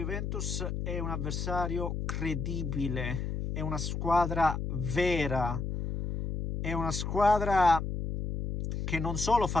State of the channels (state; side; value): noise; left; hum, 3 dB below the sound